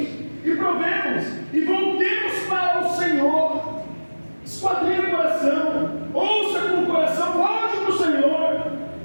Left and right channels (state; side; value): inverted; both; correlation -1.00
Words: e provemos e voltemos para o Senhor. Esquadrinhe o coração, ouça com o coração, volte para o Senhor,